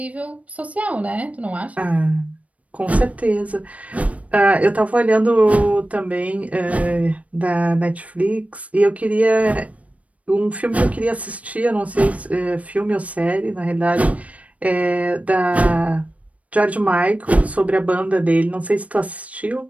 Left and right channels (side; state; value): left; late; 0.066 ms